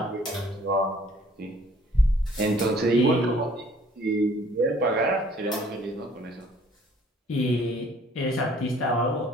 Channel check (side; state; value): both; normal; correlation 0.57